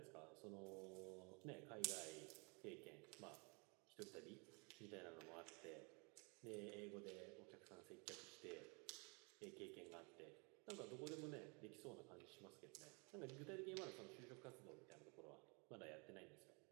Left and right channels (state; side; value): quieter; left; 31.8 dB